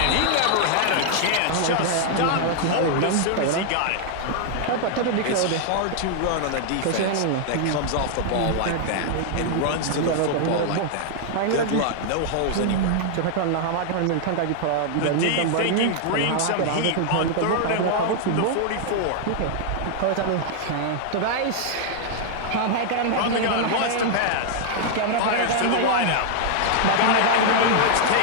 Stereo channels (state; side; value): different; both; correlation 0.00